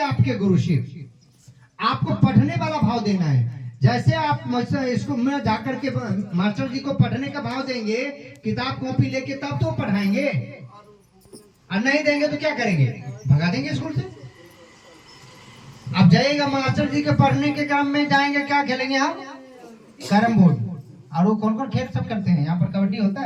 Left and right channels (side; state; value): both; identical; correlation 1.00